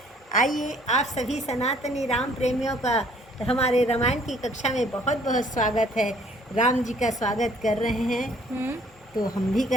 आइए, आप सभी सनातनी राम प्रेमियों का हमारे रामायण की कक्षा में बहुत बहुत स्वागत है। राम जी का स्वागत कर रहे हैं तो हम भी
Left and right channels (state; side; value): normal; both; correlation 0.59